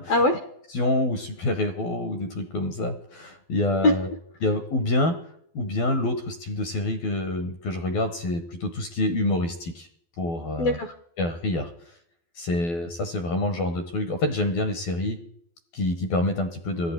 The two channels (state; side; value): late; right; 12 ms